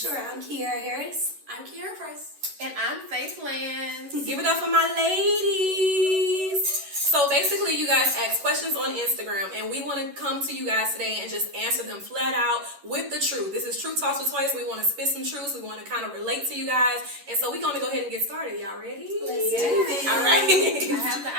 I'm Kiara Harris. I'm Kiara Price. And I'm Faith Lance. Give it up for my ladies. So basically, you guys ask questions on Instagram, and we want to come to you guys today and just answer them flat out with the truth. This is Truth Talks with Twice. We want to spit some truths. We want to kind of relate to you guys. And so we're going to go ahead and get started. Y'all ready? Let's do it. All right. I have the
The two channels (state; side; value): late; left; 11 ms